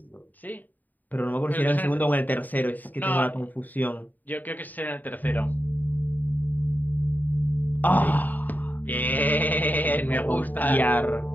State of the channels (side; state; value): right; late; 0.086 ms